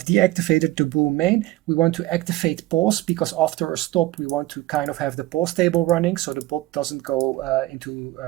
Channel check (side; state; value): left; quieter; 17.1 dB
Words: deactivated the bull main. We want to activate pause because after a stop we want to kind of have the pause table running so the bot doesn't go into